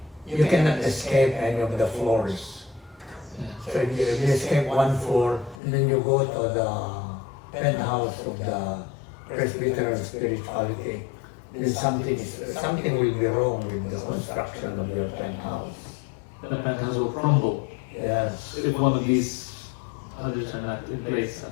you cannot escape any of the floors. So if you escape one floor, and then you go to the penthouse of the Presbyterian spirituality, then something will be wrong with the construction of your penthouse. The penthouse will crumble Yes. if one of these others are not in place.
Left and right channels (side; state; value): right; drops out; at 5.6 s